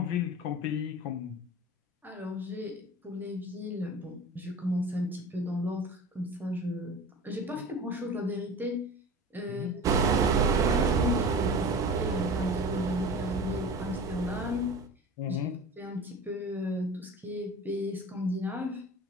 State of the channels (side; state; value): both; normal; correlation 0.36